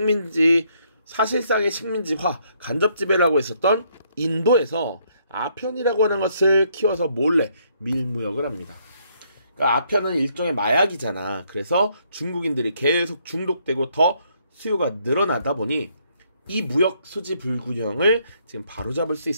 사실상의 식민지화, 간접 지배라고 했었던 인도에서 아편이라고 하는 것을 키워서 몰래 밀무역을 합니다. 그러니까 아편은 일종의 마약이잖아. 그래서 중국인들이 계속 중독되고 더 수요가 늘어나다 보니 이 무역 수지 불균형을 지금 바로잡을 수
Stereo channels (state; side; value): inverted; both; correlation -0.70